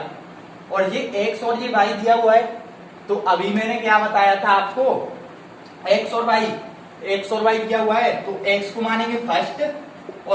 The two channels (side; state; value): both; identical; correlation 1.00